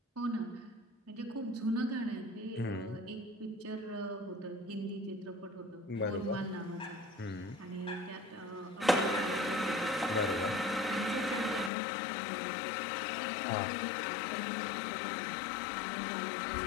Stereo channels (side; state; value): right; drops out; at 11.7 s